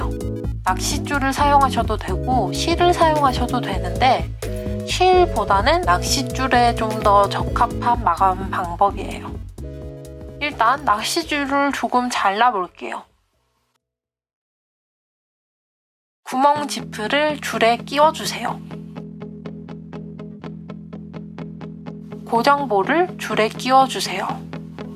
낚싯줄을 사용하셔도 되고 실을 사용하셔도 되는데 실보다는 낚싯줄에 좀 더 적합한 마감 방법이에요. 일단 낚싯줄을 조금 잘라볼게요. 구멍 지프를 줄에 끼워주세요. 고정볼을 줄에 끼워주세요.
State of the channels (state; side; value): identical; both; correlation 1.00